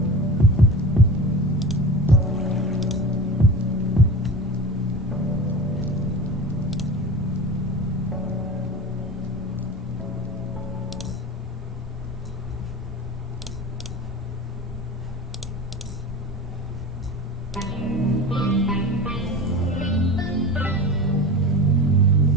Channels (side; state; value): both; normal; correlation 0.32